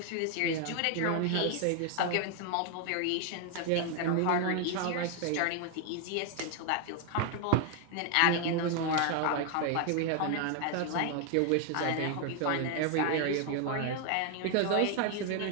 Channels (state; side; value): different; both; correlation 0.00